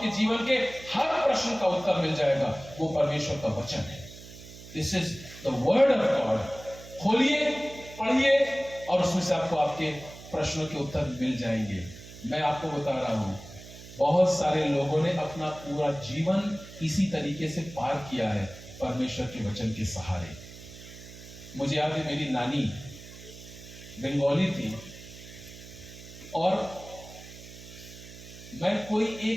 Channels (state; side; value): noise; right; hum, 16 dB below the sound